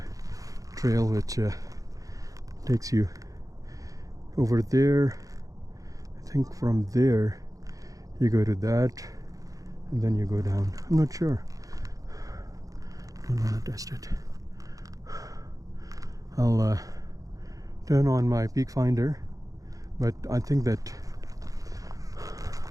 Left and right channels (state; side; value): late; left; 0.17 ms